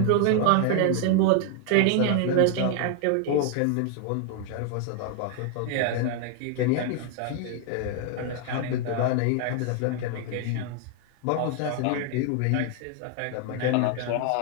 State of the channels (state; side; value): different; both; correlation 0.00